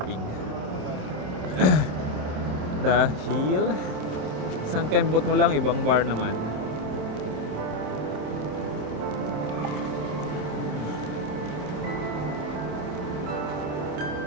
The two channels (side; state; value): left; late; 27 ms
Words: Dahil isang kembot mo lang, ibang bar naman.